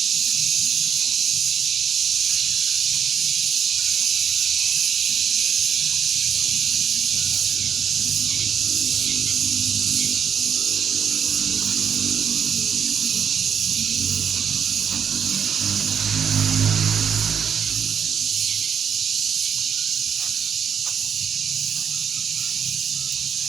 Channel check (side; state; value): left; quieter; 7.6 dB